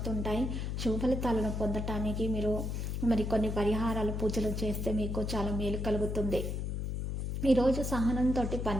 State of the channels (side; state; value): left; noise; hum, 2 dB below the sound